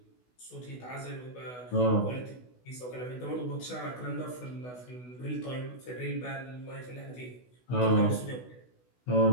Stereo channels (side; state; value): right; late; 16 ms